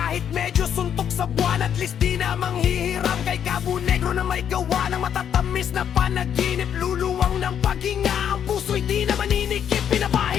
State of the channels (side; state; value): right; quieter; 8.8 dB